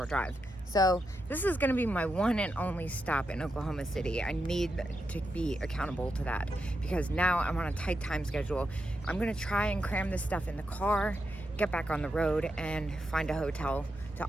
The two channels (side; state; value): both; normal; correlation 0.85